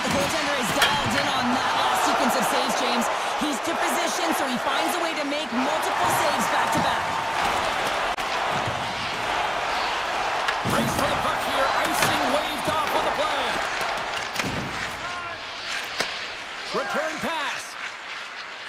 the goaltender is dialed in on that last sequence of saves, James. He's to position, so he finds a way to make multiple saves back-to-back. Race for the puck here. Icing waved off on the play. Return pass.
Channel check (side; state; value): both; identical; correlation 1.00